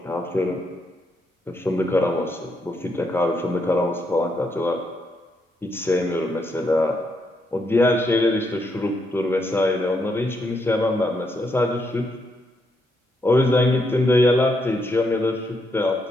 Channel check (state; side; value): normal; both; correlation 0.78